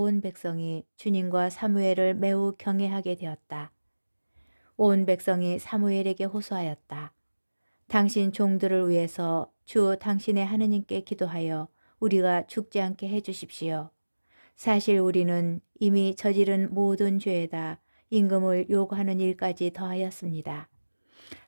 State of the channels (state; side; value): inverted; both; correlation -1.00